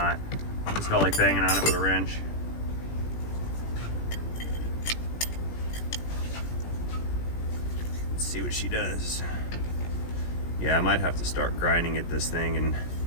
Just felt like banging on it with a wrench. Let's see what she does. Yeah, I might have to start grinding at this thing and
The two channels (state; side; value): late; right; 17 ms